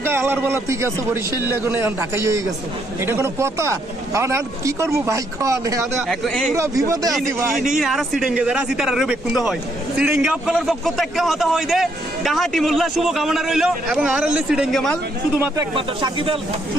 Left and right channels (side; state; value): both; normal; correlation 0.72